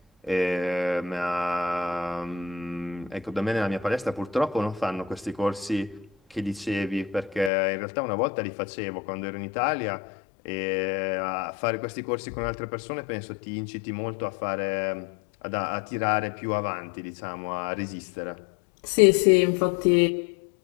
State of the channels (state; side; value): drops out; right; at 7.5 s